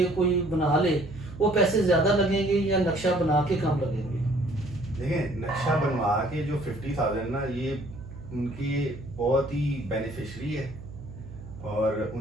कोई बना ले वो पैसे ज़्यादा लगेंगे या नक्शा बना के कम लगेंगे? देखिए, नक्शा बनवा के जो 50,000 ना ये उनकी बहुत ही बेनिफिशरी है और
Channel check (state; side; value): noise; right; hum, 14 dB below the sound